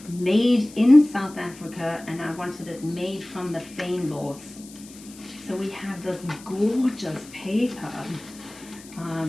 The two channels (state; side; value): noise; left; hiss, 20 dB below the sound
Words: made in South Africa, and I wanted it made from the fynbos. So we have this gorgeous paper